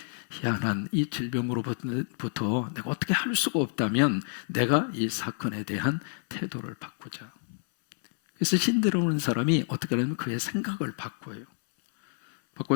희한한 이 질병으로부터 내가 어떻게 할 수가 없다면 내가 이 사건에 대한 태도를 바꾸자. 그래서 신데라는 사람이 어떻게 하면 그의 생각을 바꿔요.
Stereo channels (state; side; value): silent; right; 59 dB below the other